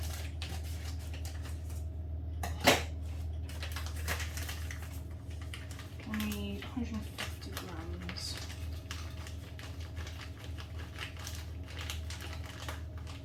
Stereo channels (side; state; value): both; identical; correlation 1.00